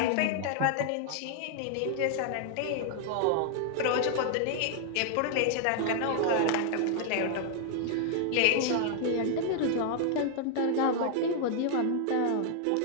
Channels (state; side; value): different; both; correlation 0.00